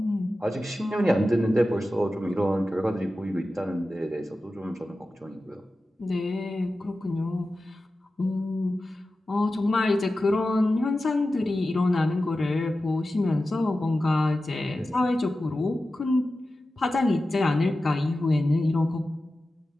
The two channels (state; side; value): normal; both; correlation 0.94